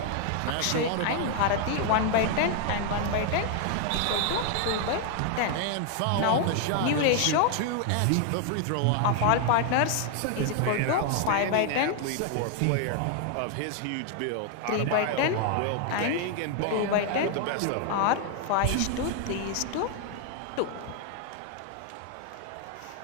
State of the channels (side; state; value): both; different; correlation 0.00